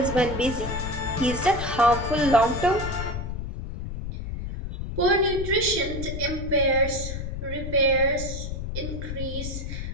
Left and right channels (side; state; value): left; noise; rumble, 6 dB below the sound